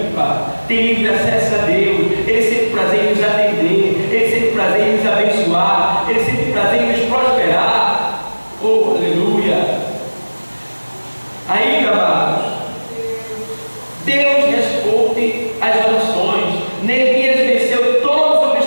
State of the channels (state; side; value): inverted; both; correlation -1.00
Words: tem livre acesso a Deus, Ele sempre prazer em nos atender. Deus responde às orações. Neemias venceu todos os